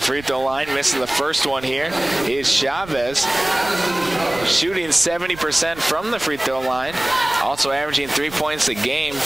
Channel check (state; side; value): noise; right; rumble, 18 dB below the sound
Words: throw line, missing the first one here is Chavez, shooting 70% from the free throw line, also averaging 3 points a game.